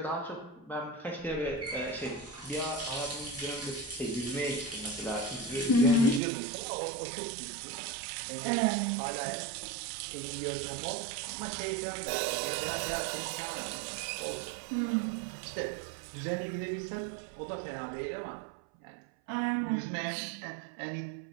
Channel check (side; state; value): left; drops out; at 6.2 s